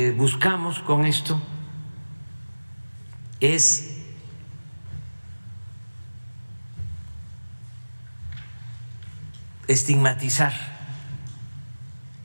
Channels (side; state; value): both; inverted; correlation -1.00